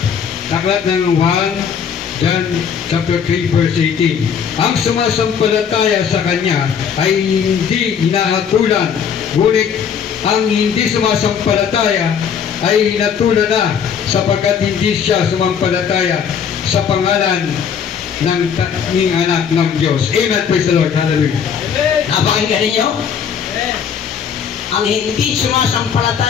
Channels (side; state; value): right; quieter; 7.4 dB